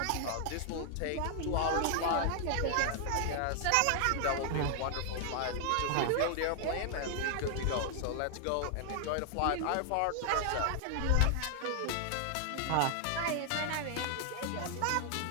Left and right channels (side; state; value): both; different; correlation 0.00